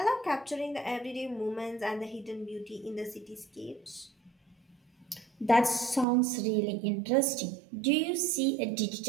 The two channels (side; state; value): left; drops out; at 6.1 s